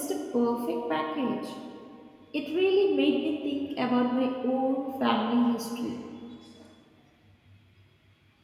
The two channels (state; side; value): identical; both; correlation 1.00